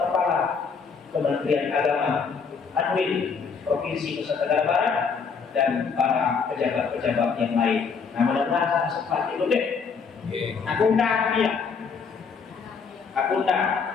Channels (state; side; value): quieter; right; 5.5 dB